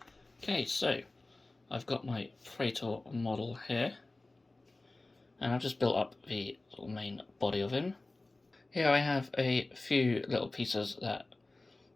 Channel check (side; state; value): right; quieter; 3.0 dB